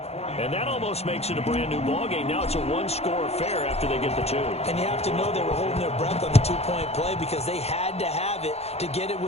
And that almost makes it a brand new ballgame. Now it's a one-score affair after they get the 2. And you have to know they were holding their breath on the 2-point play because they had to have it to get it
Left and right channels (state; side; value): late; right; 0.30 ms